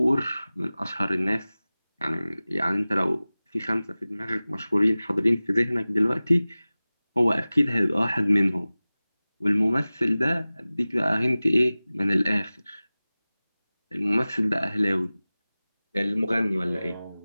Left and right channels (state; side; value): inverted; both; correlation -0.98